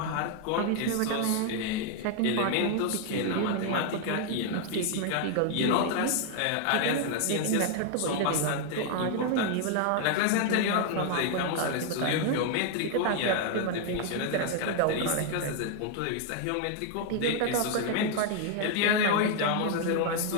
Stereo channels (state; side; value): different; both; correlation 0.00